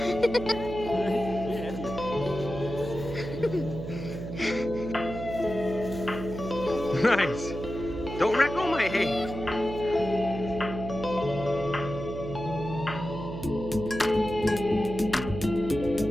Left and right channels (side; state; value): right; noise; hum, 8 dB below the sound